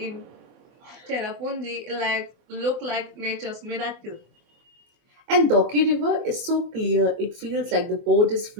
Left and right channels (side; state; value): left; late; 24 ms